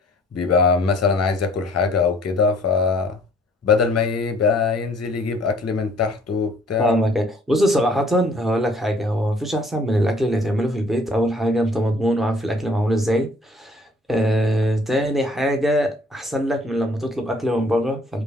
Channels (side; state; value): both; normal; correlation 0.58